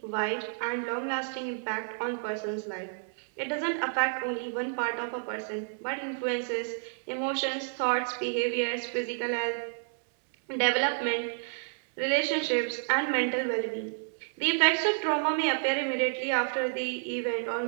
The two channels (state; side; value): silent; left; 58 dB below the other